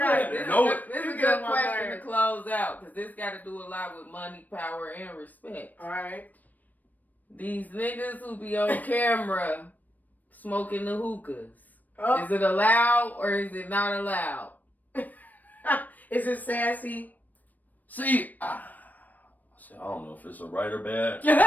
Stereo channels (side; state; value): right; late; 0.083 ms